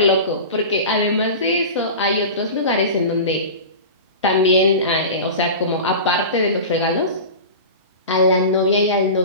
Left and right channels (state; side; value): inverted; both; correlation -0.31